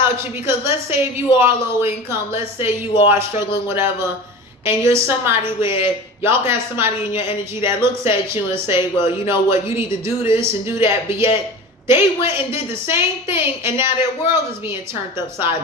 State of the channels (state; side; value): normal; both; correlation 0.34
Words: you, because let's say if you are low income, let's say you are struggling, whatever, and you're somebody where y'all can have somebody in your energy that looks at you and say, well, you know what, you need to do this and do that, but yet they went and did the same thing and now their world is being turned upside